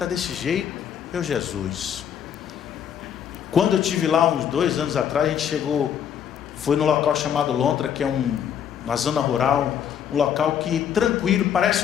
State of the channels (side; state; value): right; quieter; 8.8 dB